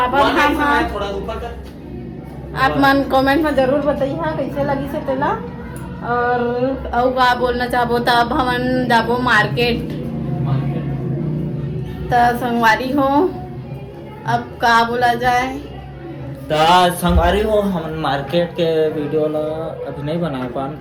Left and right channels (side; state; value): both; identical; correlation 1.00